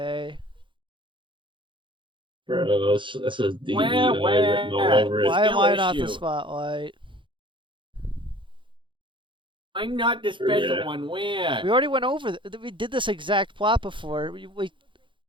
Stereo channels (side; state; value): left; late; 0.24 ms